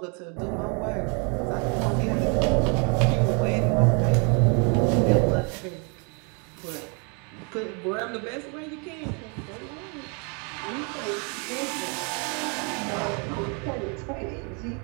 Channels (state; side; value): quieter; left; 35.7 dB